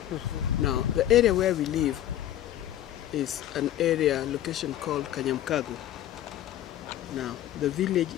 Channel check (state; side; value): quieter; right; 12.3 dB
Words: Now, the area where we live is an area, location called Kanyamkago. Now, the village